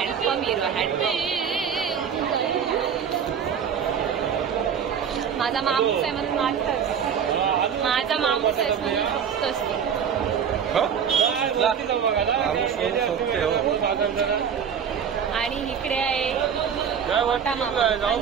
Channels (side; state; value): left; quieter; 7.6 dB